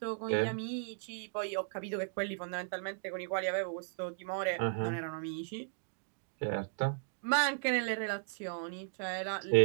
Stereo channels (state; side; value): silent; left; digital silence